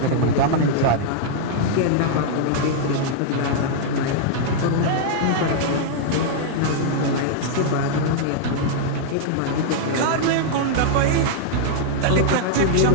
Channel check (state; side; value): different; both; correlation -0.01